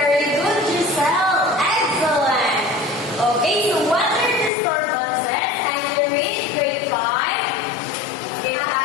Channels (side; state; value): right; drops out; at 4.5 s